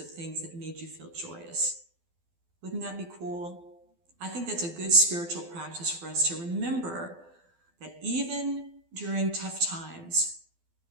things that made you feel joyous. Wouldn't that be cool? I think that's a good spiritual practice for us to remember that even during tough times,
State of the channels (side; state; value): left; late; 12 ms